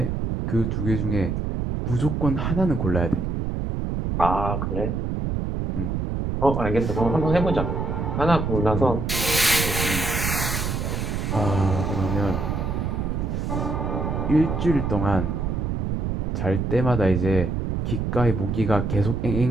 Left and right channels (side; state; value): right; noise; rumble, 1 dB below the sound